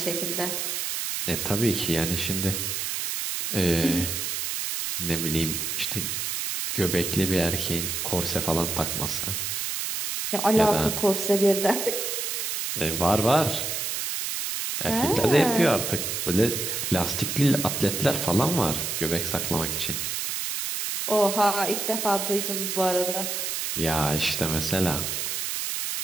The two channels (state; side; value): noise; right; hiss, 2 dB below the sound